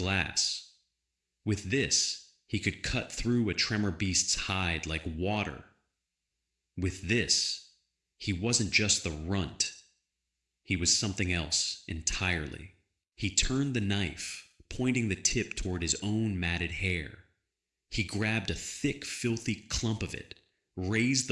With this, he could cut through a tremor beast's hide like water. With this, he wasn't just the runt. He was something else entirely. He turned the knife, pointing the tip toward his own matted hair. He grabbed a thick, filthy clump of it, raised the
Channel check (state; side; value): identical; both; correlation 1.00